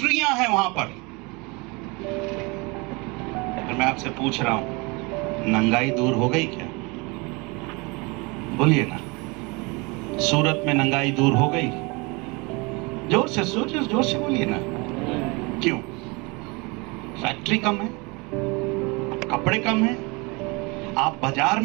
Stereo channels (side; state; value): left; quieter; 27.6 dB